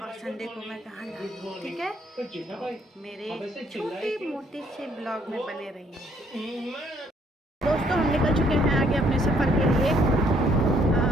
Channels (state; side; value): normal; both; correlation 0.66